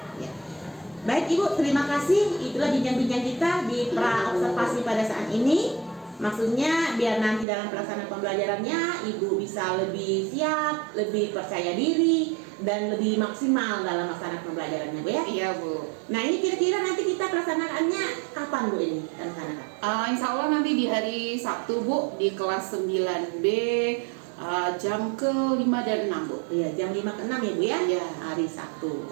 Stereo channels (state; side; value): drops out; left; at 7.5 s